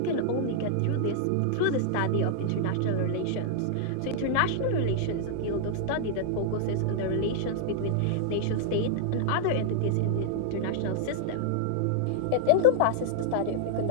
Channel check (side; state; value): both; different; correlation -0.01